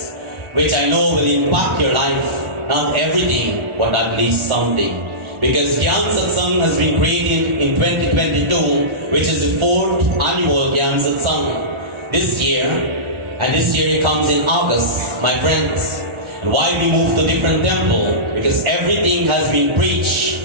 which I know will impact your life. Not everything, but at least something. Because Gyaan Satsangh has been created in 2022, which is the 4th annual Gyaan Satsangh. This year, And this year it comes in August, my friends. And why we move to different temple? Because everything has been preached.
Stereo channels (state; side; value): late; left; 1.4 ms